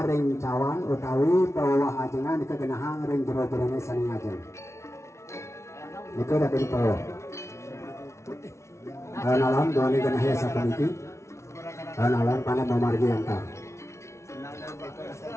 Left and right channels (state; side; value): late; right; 0.13 ms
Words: ring cawan utawi pawawah ajengan nike genahang ring jero-jerone saning ajeng. Nike dadi pawawah. Alam doni genahya sapuniki. Alam pana memargi antar.